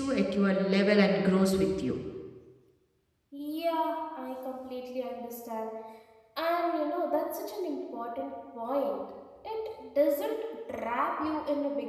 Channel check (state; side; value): identical; both; correlation 1.00